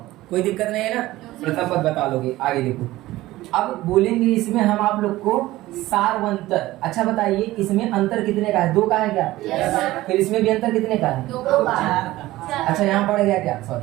कोई दिक्कत नहीं है ना, प्रथम पद बता लोगे। आगे देखो, अब बोलेंगे इसमें हम आप लोग को सारवंतर। अच्छा बताइए इसमें अंतर कितने का है? 2 का है क्या? yes, फिर इसमें भी अंतर कितने का है? 2 का। अच्छा यहाँ पड़ गया क्या?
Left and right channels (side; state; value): left; quieter; 17.1 dB